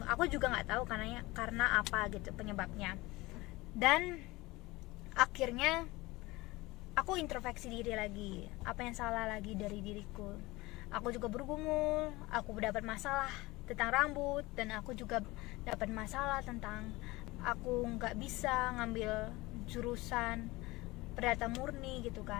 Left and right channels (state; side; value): quieter; right; 21.1 dB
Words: Aku juga nggak tahu karena apa gitu penyebabnya. Dan akhirnya aku introspeksi diri lagi, apa yang salah lagi dari diriku. Aku juga bergumul, aku dapat masalah tentang rambut, dan aku juga dapat masalah tentang aku nggak bisa ngambil jurusan perdata murni gitu